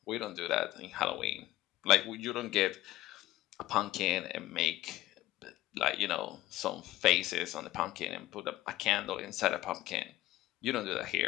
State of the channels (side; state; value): right; quieter; 15.7 dB